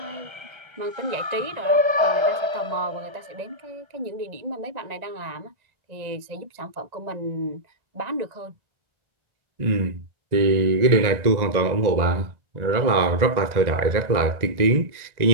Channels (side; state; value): left; late; 1.9 ms